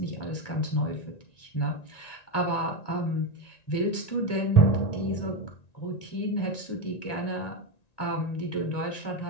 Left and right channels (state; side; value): late; right; 1.9 ms